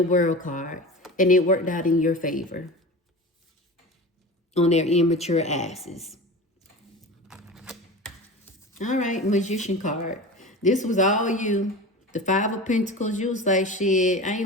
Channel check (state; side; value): normal; both; correlation 0.31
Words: World card. And it worked out in your favor on their immature asses. All right, Magician card. This was all you. The 5 of Pentacles, you was like, shit, I